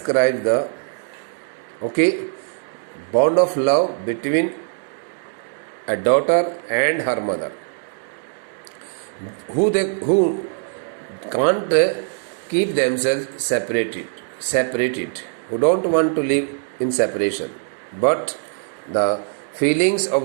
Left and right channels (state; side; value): silent; left; digital silence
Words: okay, bond of love between a daughter and her mother, who can't keep themselves separated, who don't want to live in separation. But the feelings